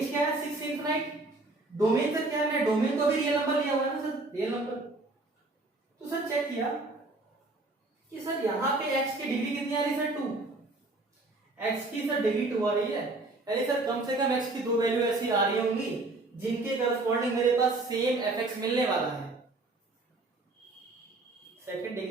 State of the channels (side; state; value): left; quieter; 3.1 dB